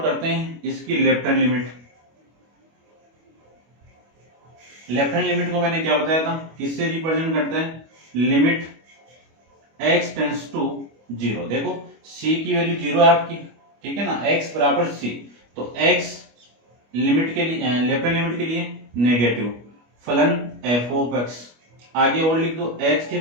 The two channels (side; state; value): left; late; 25 ms